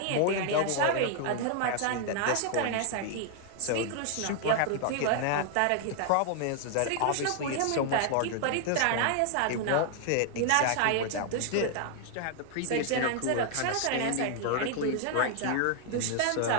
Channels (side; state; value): both; different; correlation 0.00